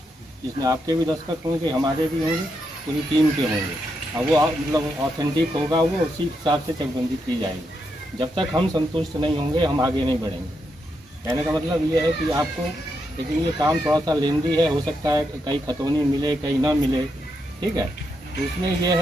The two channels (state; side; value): normal; both; correlation 0.82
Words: जिसमें आपके भी दस्तखत होंगे, हमारे भी होंगे, पूरी टीम के होंगे, और वो मतलब ऑथेंटिक होगा, वो उसी हिसाब से चकबंदी की जाएगी। जब तक हम संतुष्ट नहीं होंगे हम आगे नहीं बढ़ेंगे। कहने का मतलब ये है कि आपको लेकिन ये काम थोड़ा सा लेंदी है, हो सकता है कहीं खतौनी मिले कहीं ना मिले, ठीक है। तो उसमें ये